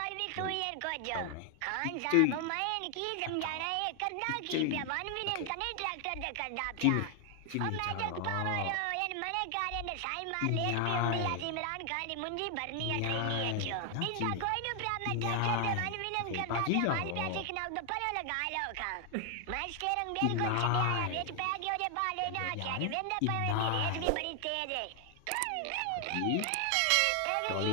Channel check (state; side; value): different; both; correlation 0.00